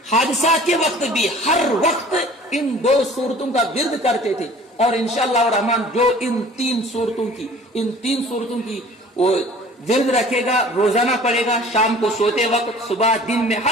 حادثات کے وقت بھی، ہر وقت ان 2 صورتوں کا ورد کرتے تھے، اور انشاءاللہ الرحمن جو ان 3 صورتوں کی وہ ورد رکھے گا، روزانہ پڑھے گا، شام کو سوتے وقت، صبح دن میں،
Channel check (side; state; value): both; normal; correlation 0.47